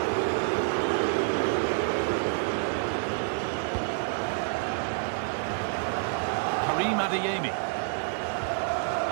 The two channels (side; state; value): left; silent; digital silence